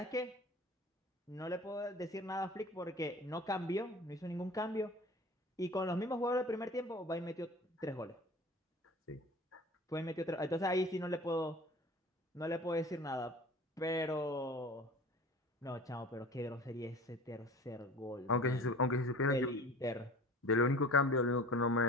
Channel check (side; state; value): both; normal; correlation 0.41